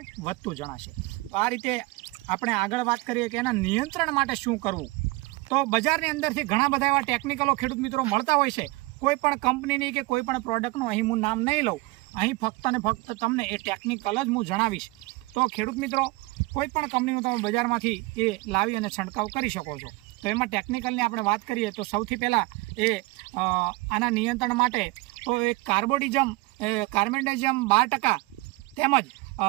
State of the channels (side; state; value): left; quieter; 22.4 dB